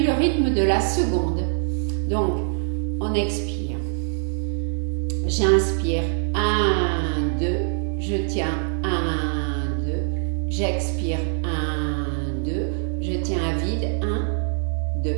le rythme de la seconde. Donc on expire. J'inspire 1, 2, je tiens 1, 2, j'expire 1, 2, je tiens à vide 1, 2.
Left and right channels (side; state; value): left; silent; digital silence